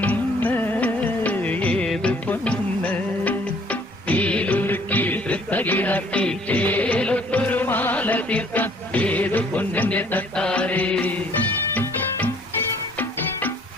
ഏത് പൊന്ന് തീലുരുക്കി വൃത്തകിടാക്കി തേലൊത്തൊരു മാല തീർക്കാൻ ഏത് പൊന്നിന്റെ തട്ടാരേ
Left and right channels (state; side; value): normal; both; correlation 0.59